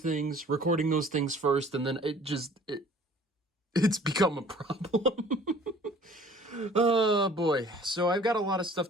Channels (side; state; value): both; normal; correlation 0.51